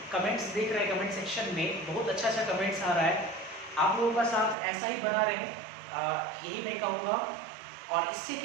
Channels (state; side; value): drops out; left; at 4.5 s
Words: कमेंट्स देख रहे हैं, कमेंट सेक्शन में बहुत अच्छा अच्छा कमेंट्स आ रहा है। आप लोगों का साथ ऐसा ही बना रहे, यही मैं कहूँगा। और इससे